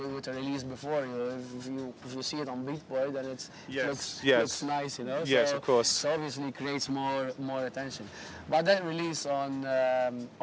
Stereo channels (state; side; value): identical; both; correlation 1.00